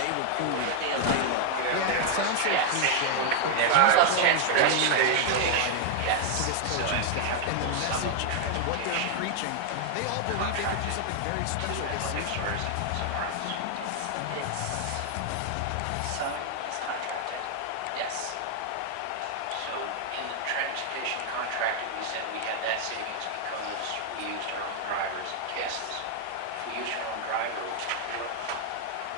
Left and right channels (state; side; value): different; both; correlation 0.00